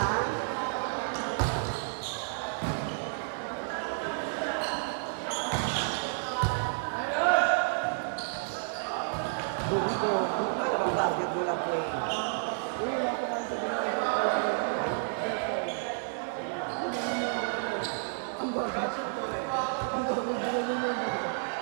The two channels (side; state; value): left; silent; digital silence